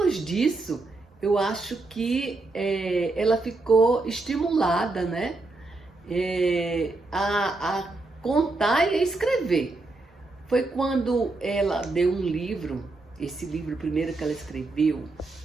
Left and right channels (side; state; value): left; quieter; 3.2 dB